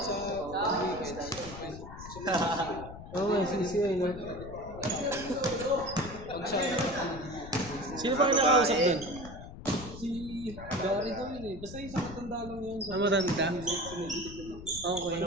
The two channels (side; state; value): left; noise; rumble, 13 dB below the sound